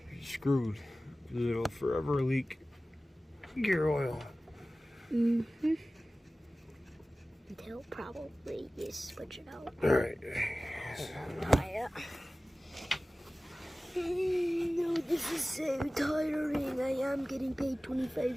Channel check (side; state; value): both; normal; correlation 0.97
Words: You're screwed. It'll forever leak gear oil. Mm-hmm. Until probably you switch it out. Alright. Tie it. No, this is so tiring. I am getting paid